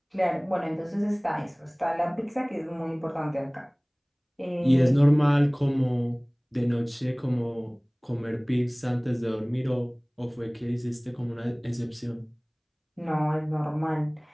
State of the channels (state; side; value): identical; both; correlation 1.00